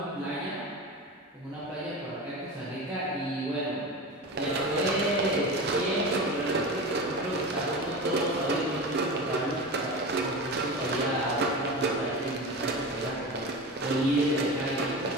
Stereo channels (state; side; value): normal; both; correlation 0.28